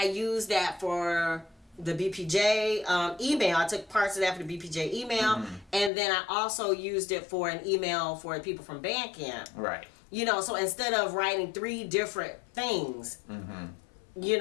used that for the BPJ email. I took parts of that for the BPJ email, and then I also used it for an email for people from Bandcamp. Right. You know, so instead of writing 3 different things, you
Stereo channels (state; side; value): drops out; right; at 5.9 s